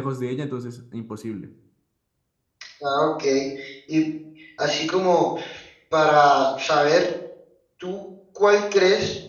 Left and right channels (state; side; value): identical; both; correlation 1.00